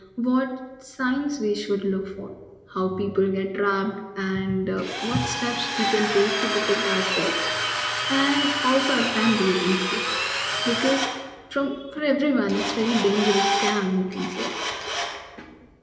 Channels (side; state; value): both; identical; correlation 1.00